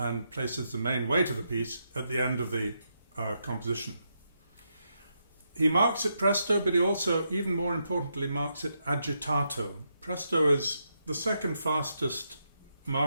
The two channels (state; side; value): inverted; both; correlation -0.82